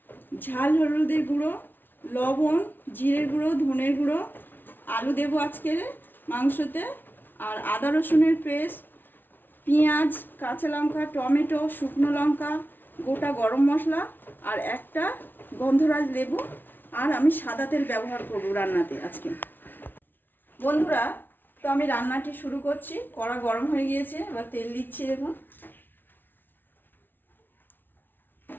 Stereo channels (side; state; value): right; late; 0.094 ms